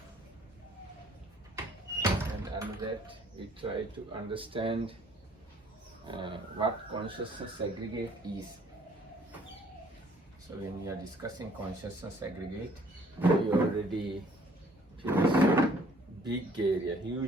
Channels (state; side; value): normal; both; correlation 0.59